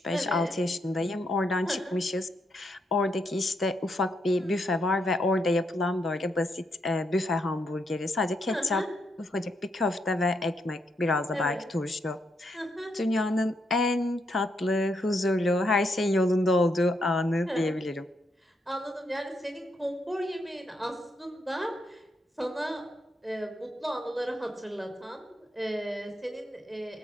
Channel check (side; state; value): both; normal; correlation 0.79